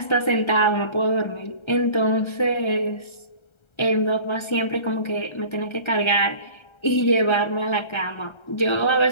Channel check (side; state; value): right; late; 1.3 ms